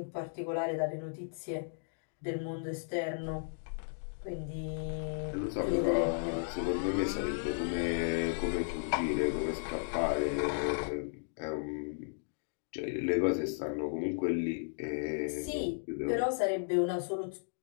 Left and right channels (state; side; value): silent; right; digital silence